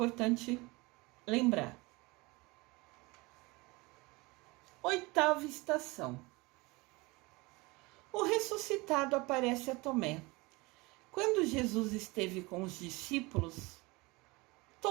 lembrar. 8ª estação. O ressuscitado aparece a Tomé. Quando Jesus esteve com os discípulos,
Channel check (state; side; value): quieter; left; 24.1 dB